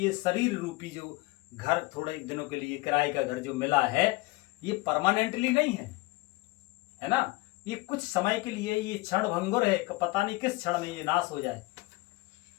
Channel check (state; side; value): quieter; right; 22.1 dB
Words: शरीर रूपी जो घर थोड़े दिनों के लिए किराए का घर जो मिला है, ये परमानेंटली नहीं है ना। ये कुछ समय के लिए, ये क्षण भंगुर है, पता नहीं किस क्षण में ये नाश हो जाए।